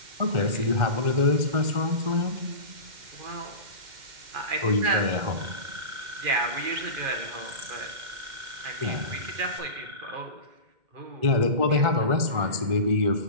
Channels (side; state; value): left; late; 2.1 ms